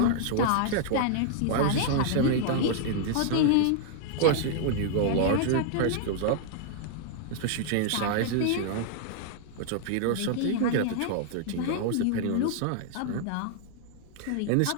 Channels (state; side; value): different; both; correlation -0.01